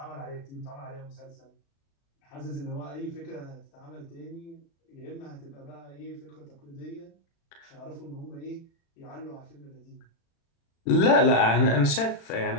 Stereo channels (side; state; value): right; late; 36 ms